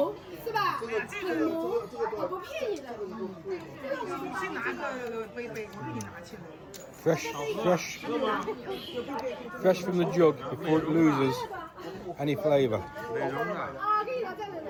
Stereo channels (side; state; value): both; identical; correlation 1.00